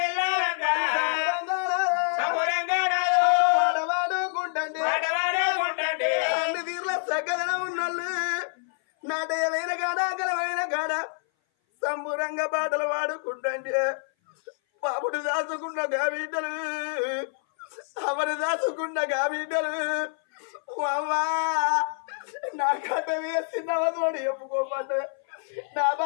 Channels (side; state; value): right; silent; 58 dB below the other